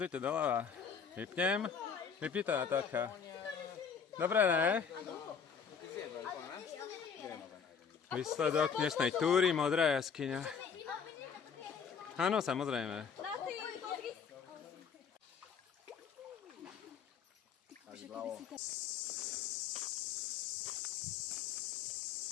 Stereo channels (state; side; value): quieter; right; 6.6 dB